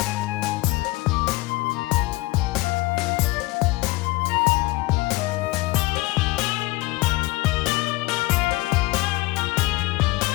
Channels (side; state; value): right; quieter; 21.1 dB